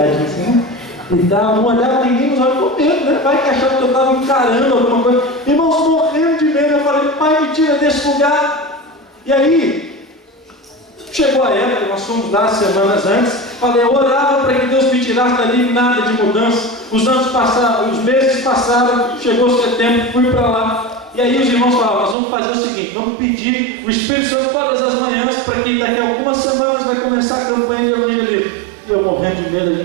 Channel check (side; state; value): left; drops out; at 22.2 s